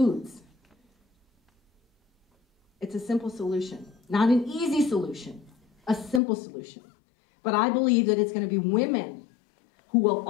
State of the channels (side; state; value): right; drops out; at 6.2 s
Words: It's a simple solution, not an easy solution, a simple solution. But I believe that it's going to be women who will